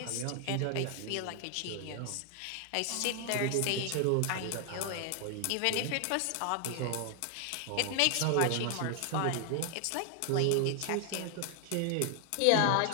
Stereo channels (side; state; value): both; different; correlation 0.00